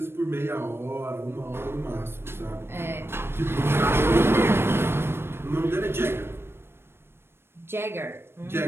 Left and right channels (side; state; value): left; late; 0.12 ms